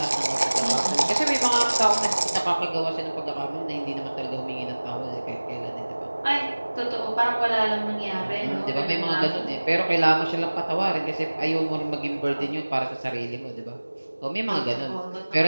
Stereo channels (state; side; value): inverted; both; correlation -1.00